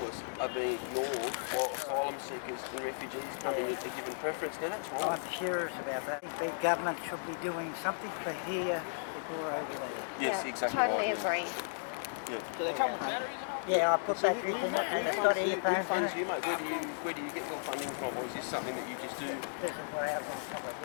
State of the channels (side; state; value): right; silent; digital silence